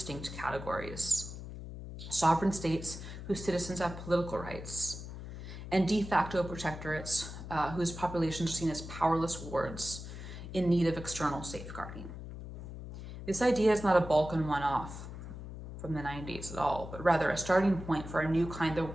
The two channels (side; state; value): left; noise; hum, 10 dB below the sound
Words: categories: sovereign states whose citizens have political rights, and de facto protectorates whose populations are seen as powerless wards in need of external safeguarding. This idea is not a Balkan one-off from the 90s at all, but rather a starting point for a new kind